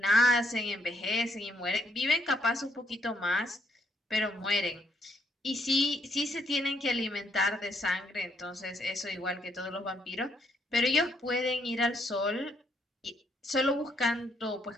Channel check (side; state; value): both; normal; correlation 0.72